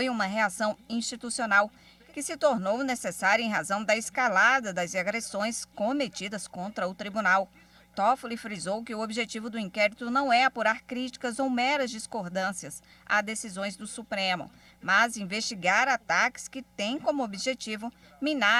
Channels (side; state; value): both; identical; correlation 1.00